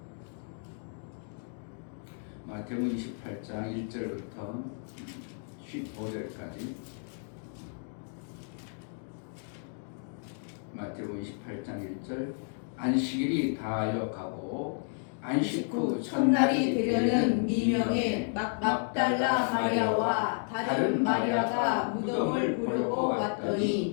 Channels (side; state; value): right; silent; 57 dB below the other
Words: 마태복음 28장 1절부터 15절까지 마태복음 28장 1절 안식일이 다하여 가고 안식 후 첫날이 되려는 미명의 막달라 마리아와 다른 마리아가 무덤을 보려고